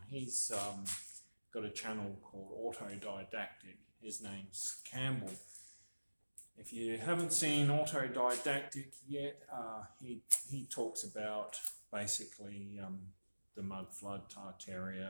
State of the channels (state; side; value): inverted; both; correlation -1.00